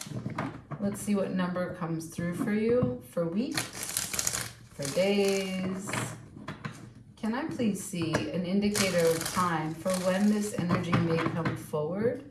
Let's see what number comes through for you for weeks, for days. Can I please see an indicator of time for when this energy may come forward?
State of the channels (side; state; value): both; identical; correlation 1.00